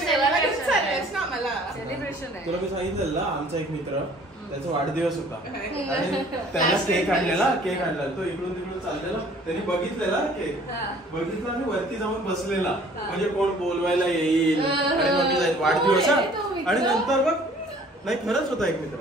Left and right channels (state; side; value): normal; both; correlation 0.54